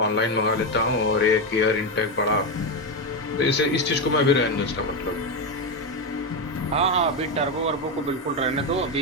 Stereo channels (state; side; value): normal; both; correlation 0.10